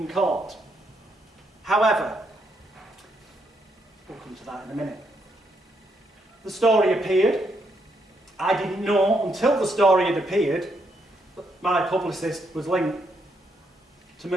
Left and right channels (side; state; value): both; normal; correlation 0.77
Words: court. However, we'll come to that in a minute. The story appeared. I didn't know until the story had appeared that my publicist was linked to